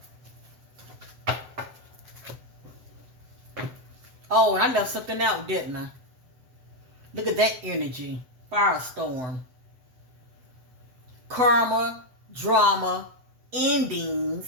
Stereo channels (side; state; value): left; late; 7.8 ms